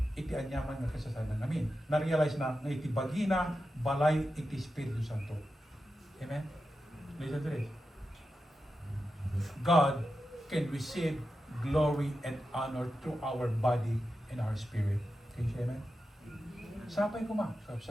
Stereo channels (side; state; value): both; normal; correlation 0.90